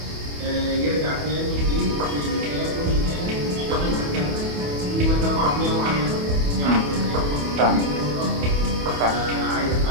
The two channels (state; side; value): late; left; 28 ms